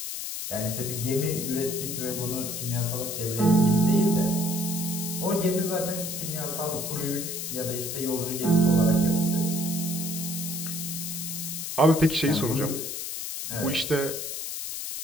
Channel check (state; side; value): noise; left; hiss, 5 dB below the sound